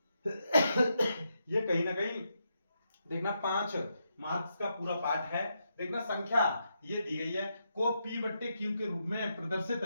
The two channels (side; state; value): both; inverted; correlation -0.82